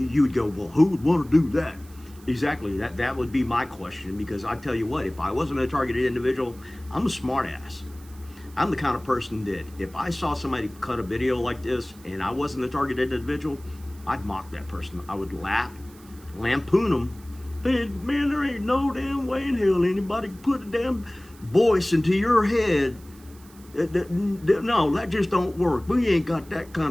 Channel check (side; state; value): right; noise; hiss, 24 dB below the sound